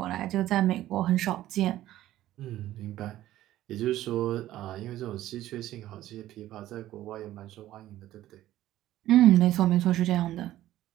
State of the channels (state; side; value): quieter; left; 14.1 dB